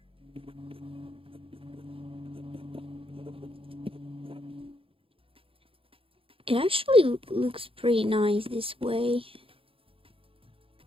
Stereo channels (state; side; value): late; left; 0.27 ms